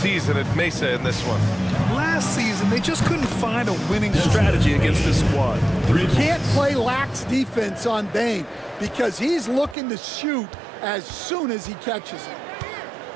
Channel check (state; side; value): drops out; left; at 9.8 s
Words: at Mesa in this one. Last season, they just couldn't find a winning strategy against this squad. You can't play lax defense on Bain. because he's looking to shoot as soon as he catches it.